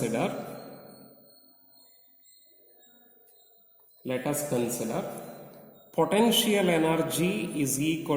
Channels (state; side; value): identical; both; correlation 1.00